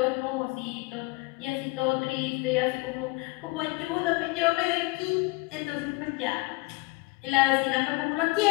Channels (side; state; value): right; quieter; 24.9 dB